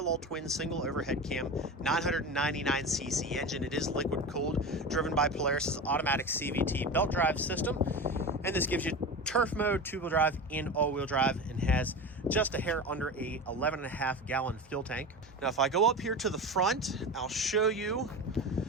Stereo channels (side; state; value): both; normal; correlation 0.27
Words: twin single overhead cam 999cc engine. It is liquid cooled, driven by Polaris's automatic CVT belt drive system. And this gives you turf mode, two-wheel drive, and all-wheel drive, and has just a hair under a 11.5 gallon fuel tank. Now, if I go up here to the front, I'll show you.